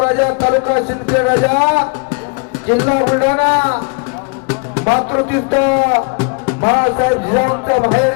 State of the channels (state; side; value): quieter; right; 36.1 dB